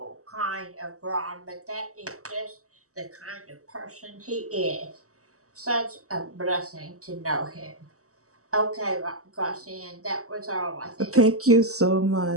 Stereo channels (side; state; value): left; late; 0.65 ms